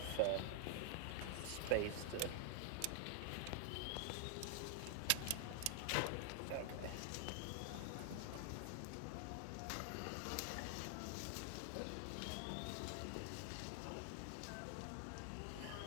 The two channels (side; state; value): both; different; correlation 0.00